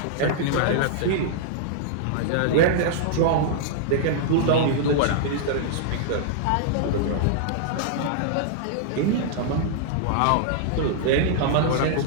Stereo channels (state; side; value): different; both; correlation -0.01